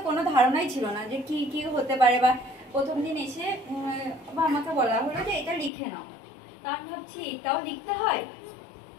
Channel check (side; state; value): right; drops out; at 5.7 s